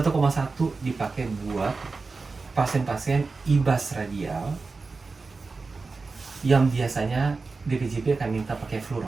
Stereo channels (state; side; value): quieter; left; 4.1 dB